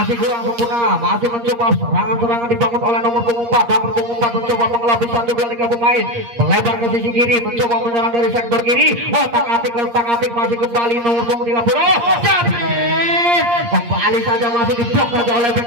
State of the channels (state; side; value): late; left; 8.5 ms